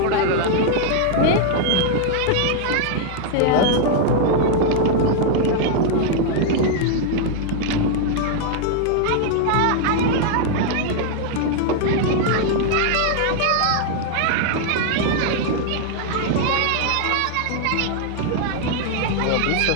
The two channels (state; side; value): different; both; correlation 0.00